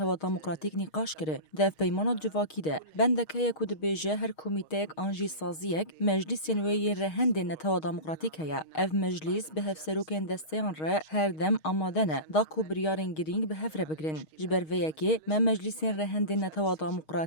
دموکراتیک نقاش کرده ده پیمانات جواکی ده بندکه یکو ده بیجه هر کمیتهک آنجی سازیک مجلسین وی رهندین نتوا دموکراتیک هیا اف مجلس به هفسروکین دستیان ره هر دم آمادنه دا کو بریارن گرینگ به هفره بگرن جبر ویکی ما مجلسین رهندین نتوا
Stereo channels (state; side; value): late; right; 6.4 ms